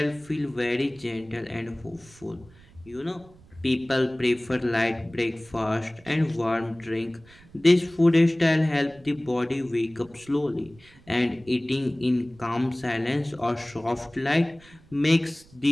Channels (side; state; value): right; noise; rumble, 25 dB below the sound